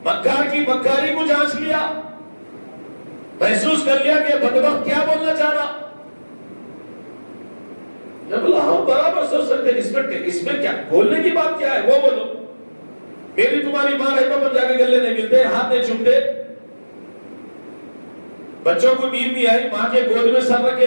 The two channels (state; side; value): inverted; both; correlation -1.00